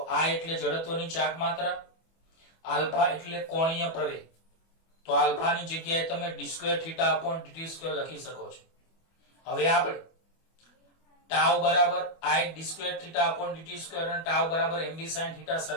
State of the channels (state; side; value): late; right; 24 ms